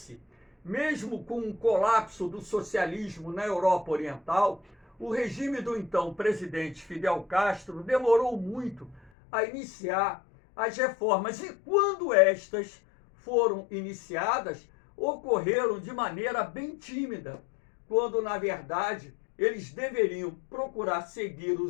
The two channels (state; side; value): drops out; right; at 9.1 s